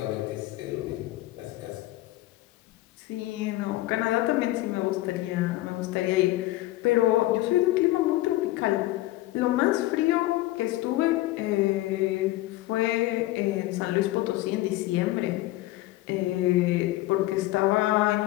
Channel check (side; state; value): right; quieter; 17.2 dB